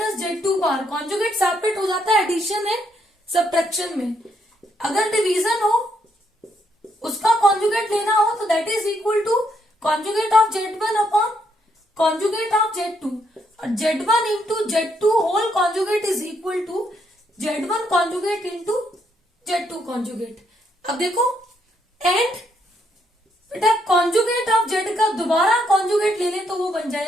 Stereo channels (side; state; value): both; normal; correlation 0.75